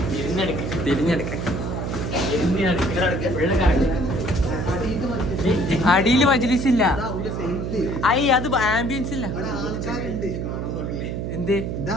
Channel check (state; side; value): noise; right; hum, 3 dB below the sound